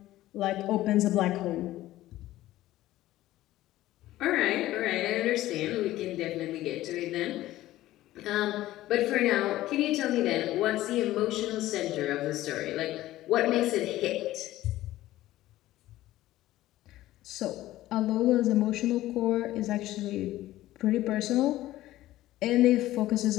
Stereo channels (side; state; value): right; quieter; 15.4 dB